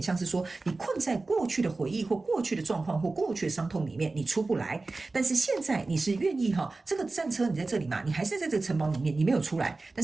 像是说你困在过去的回忆或过去的状况或过去的伤痛里面，你出不来。但是现在你是愿意这个战车你在这里嘛，你还是在这个城堡里面，你没有出来，但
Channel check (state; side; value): quieter; left; 3.5 dB